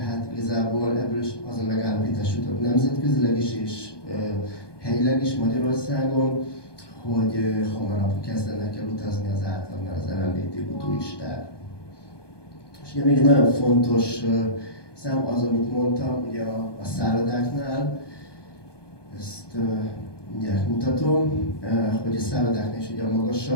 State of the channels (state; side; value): late; right; 1.2 ms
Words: igazából ebből is az a megállapítás jutott nemzetközileg is és helyileg is Magyarországon, hogy hamarabb kezdenek el utazni az átlagnál az LMBTQ turisták. És ugye még egy nagyon fontos szám az, amit mondtam, ugye a szállodáknál, ezt mindjárt mutatom, hogy a szállodáknál is ugye a